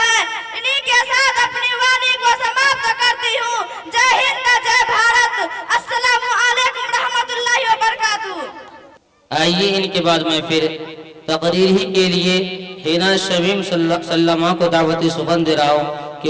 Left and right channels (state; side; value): identical; both; correlation 1.00